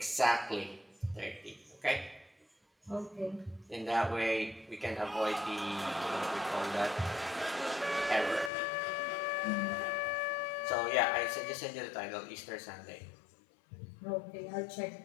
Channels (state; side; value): drops out; right; at 8.5 s